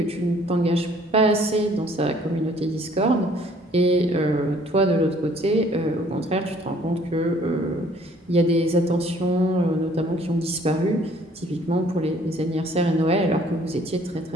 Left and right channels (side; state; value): both; normal; correlation 0.58